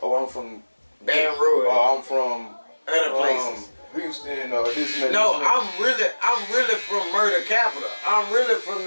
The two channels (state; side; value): inverted; both; correlation -1.00